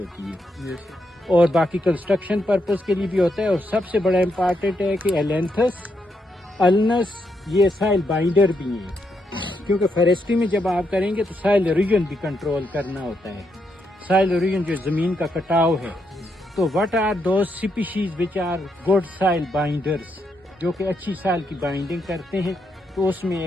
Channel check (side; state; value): both; normal; correlation 0.79